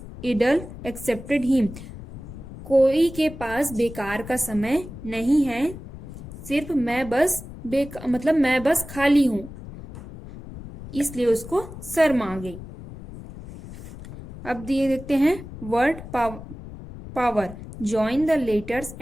idle excepted him, कोई के पास बेकार का समय नहीं है, सिर्फ मैं बस खाली हूं, इसलिए उसको शर्म आ गई। अब दिए देखते हैं word power, join the letters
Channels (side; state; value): left; noise; rumble, 13 dB below the sound